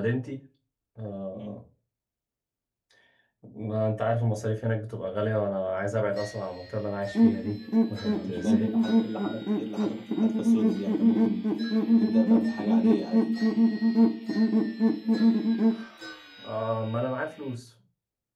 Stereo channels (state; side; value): identical; both; correlation 1.00